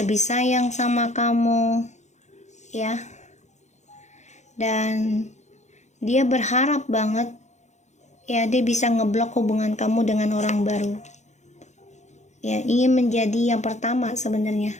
sayang sama kamu, ya. Dan dia berharap banget, ya, dia bisa ngeblok hubungan kamu dengan orang baru. Ya, ingin menjadi yang pertama sebenarnya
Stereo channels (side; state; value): right; late; 0.34 ms